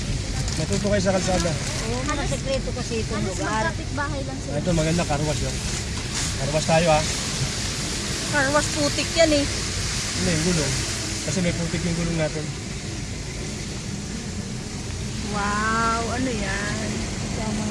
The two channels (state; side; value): identical; both; correlation 1.00